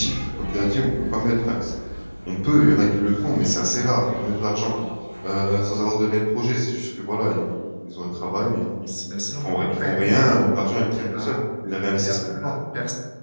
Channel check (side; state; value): both; inverted; correlation -1.00